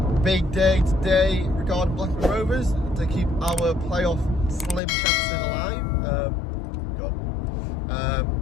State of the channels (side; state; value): right; drops out; at 4.8 s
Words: big day today regarding Blackburn Rovers to keep our playoff slim chances alive.